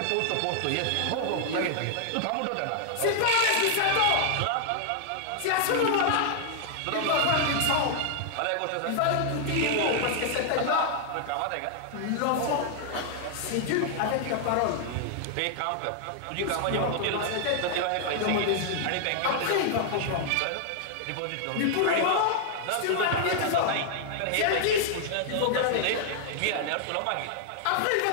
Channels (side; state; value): both; different; correlation -0.01